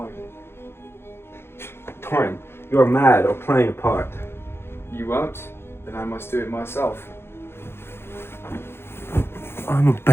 Dorian, you are mad or playing a part. You won't? Then I must do it myself. I'm a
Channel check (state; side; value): late; right; 0.12 ms